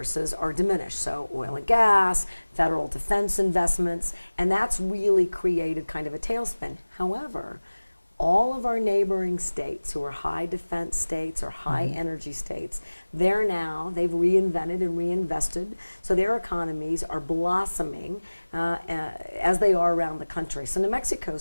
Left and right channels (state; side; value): inverted; both; correlation -1.00